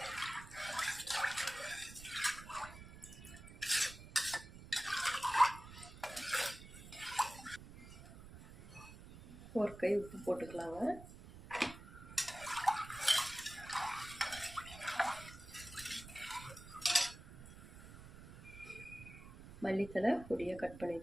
ஒரு கை உப்பு போட்டுக்கலாங்க. மல்லித்தலை பொடியாக கட் பண்ணி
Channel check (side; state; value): right; noise; rumble, 15 dB below the sound